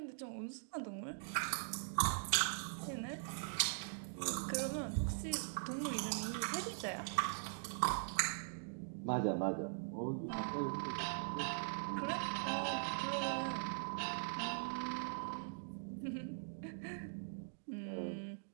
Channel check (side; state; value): left; silent; digital silence